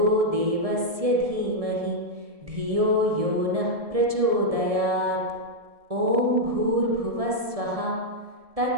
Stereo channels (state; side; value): late; left; 1.7 ms